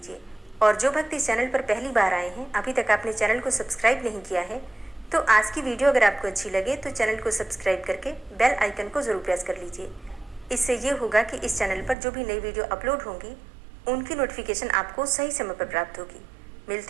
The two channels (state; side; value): drops out; left; at 12.0 s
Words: और जो भक्त इस चैनल पर पहली बार आए हैं, अभी तक आपने चैनल को सब्सक्राइब नहीं किया है, तो आज की वीडियो अगर आपको अच्छी लगे तो चैनल को सब्सक्राइब करके बेल आइकन को ज़रूर प्रेस कर लीजिए। इससे ये होगा कि इस चैनल पर जो भी नई वीडियो अपलोड होंगी उनकी नोटिफिकेशन आपको सही समय पर प्राप्त होगी।